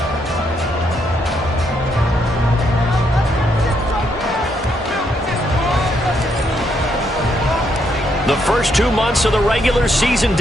The first 2 months of the regular season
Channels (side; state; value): both; normal; correlation 0.75